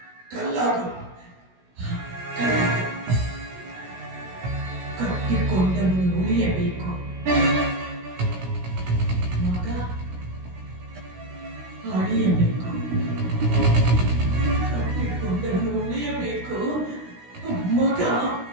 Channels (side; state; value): left; late; 16 ms